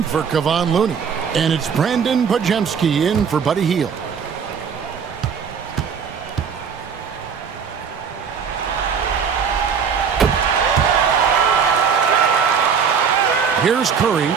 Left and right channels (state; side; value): quieter; left; 6.6 dB